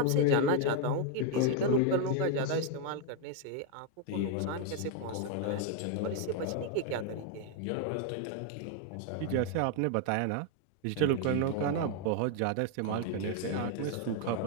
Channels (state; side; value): different; both; correlation 0.01